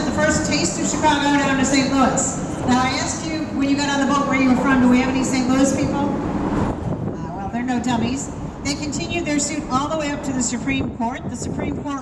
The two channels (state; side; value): identical; both; correlation 1.00